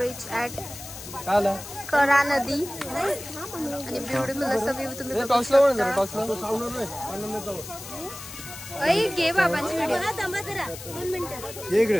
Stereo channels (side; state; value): left; noise; hiss, 12 dB below the sound